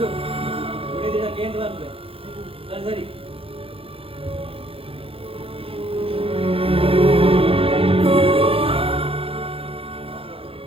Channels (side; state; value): left; late; 0.27 ms